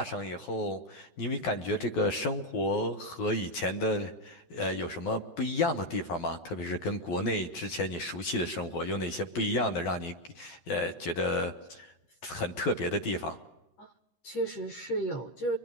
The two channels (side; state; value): right; late; 12 ms